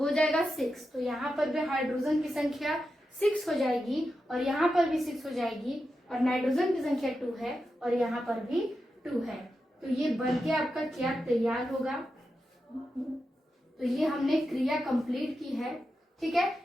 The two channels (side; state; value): both; normal; correlation 0.89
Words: जाएगा 6। तो यहाँ पर भी हाइड्रोजन की संख्या 6 हो जाएगी और यहाँ पर भी 6 हो जाएगी और नाइट्रोजन की संख्या 2 है और यहाँ पर भी 2 है। तो ये बनके आपका क्या तैयार होगा, तो ये हमने क्रिया कंप्लीट की है। ठीक